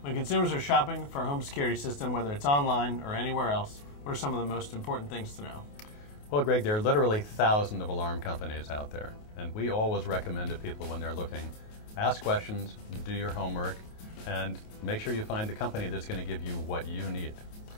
when consumers are shopping for a home security system, whether it's online or anywhere else, what are some of the most important things to know? Well, Greg, there are literally thousands of alarm companies out there, and we always recommend to people when they're looking, ask questions, do your homework, and make sure you find the company that's going to give you what you need.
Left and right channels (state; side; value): late; right; 28 ms